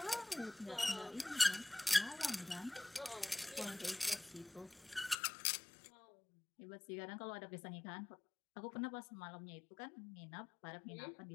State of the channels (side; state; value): right; drops out; at 5.2 s